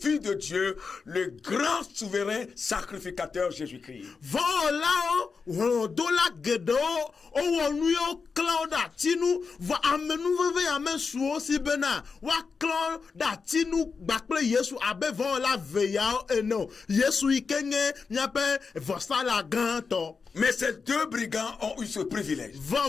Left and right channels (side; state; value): right; quieter; 5.1 dB